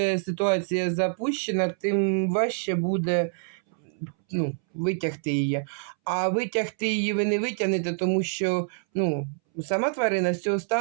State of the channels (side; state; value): left; silent; 61 dB below the other